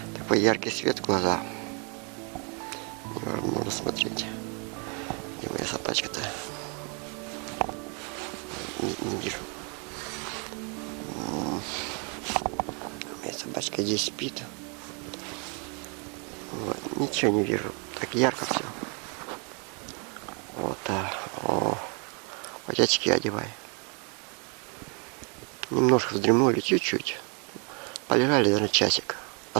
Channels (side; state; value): left; quieter; 36.3 dB